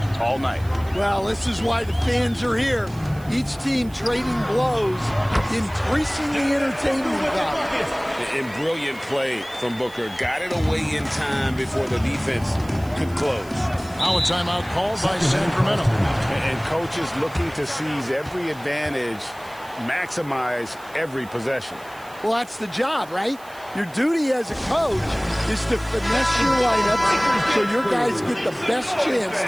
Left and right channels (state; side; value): noise; right; hiss, 23 dB below the sound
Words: all night. Well, this is why the fans are here. Each team trading blows, increasing the entertainment value. And brilliant play from Booker. Got it away in time before the defense could close. Now a timeout called by Sacramento. And coaches looking to seize every advantage, maximize every possession. Well, that's the job, right? Your duty as a coach is to finesse your lineups so your guys get the best chance